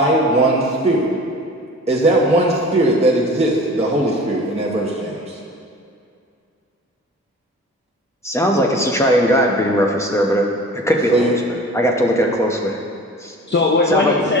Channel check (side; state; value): both; normal; correlation 0.41